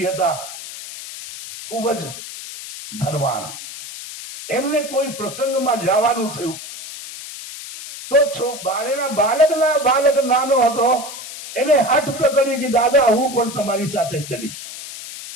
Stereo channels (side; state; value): left; noise; hiss, 11 dB below the sound